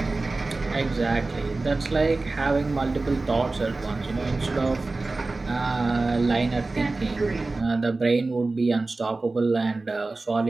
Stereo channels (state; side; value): quieter; left; 3.4 dB